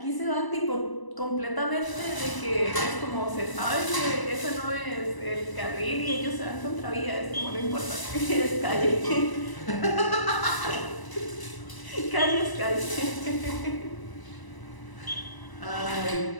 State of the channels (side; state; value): right; late; 1.0 ms